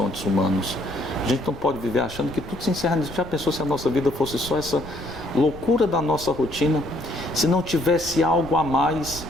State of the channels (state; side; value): noise; left; rumble, 18 dB below the sound